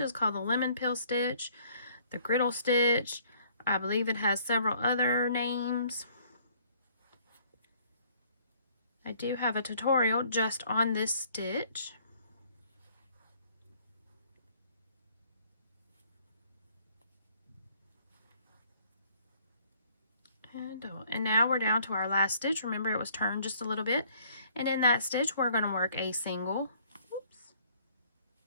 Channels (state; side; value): inverted; both; correlation -0.60